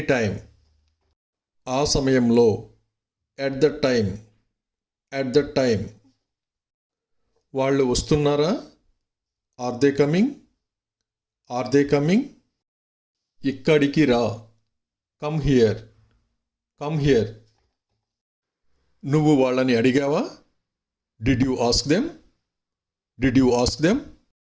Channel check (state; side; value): identical; both; correlation 1.00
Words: time, ఆ సమయంలో, at the time, at the time, వాళ్ళు వస్తున్నారా, are they coming, are they coming, ఇక్కడికి రా, కమ్ హియర్, కమ్ హియర్, నువ్వు వాళ్ళని అడిగావా, did you ask them, did you ask them,